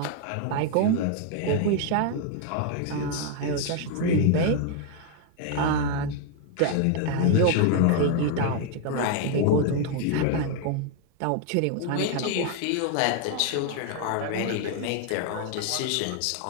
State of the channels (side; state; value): both; different; correlation 0.00